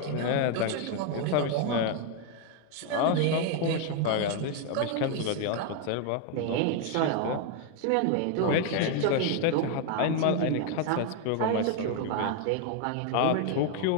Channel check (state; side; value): different; both; correlation 0.01